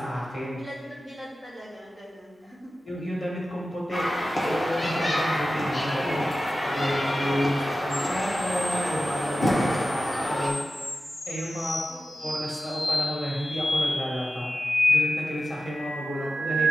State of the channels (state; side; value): normal; both; correlation 0.93